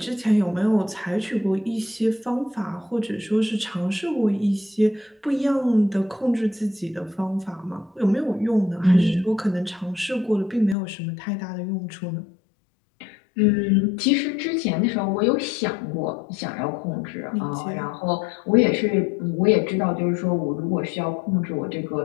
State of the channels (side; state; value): right; drops out; at 10.8 s